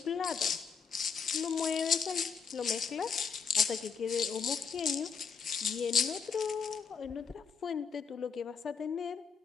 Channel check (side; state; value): right; quieter; 5.9 dB